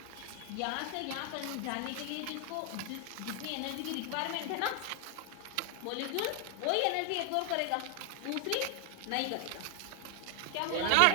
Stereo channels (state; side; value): different; both; correlation 0.00